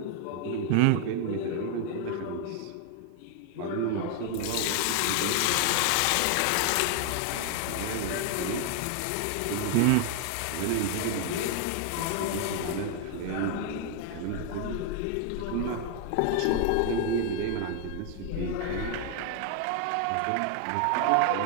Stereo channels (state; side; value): different; both; correlation 0.00